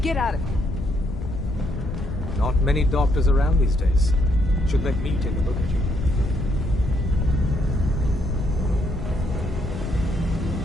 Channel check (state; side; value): noise; left; rumble, 8 dB below the sound